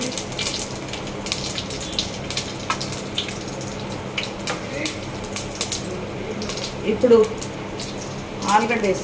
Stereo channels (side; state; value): both; identical; correlation 1.00